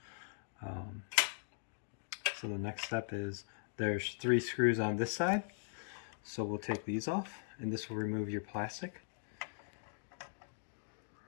So the next step is there's 3 screws on this side, so we'll take these off, and this will remove your plastic.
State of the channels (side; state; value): right; silent; digital silence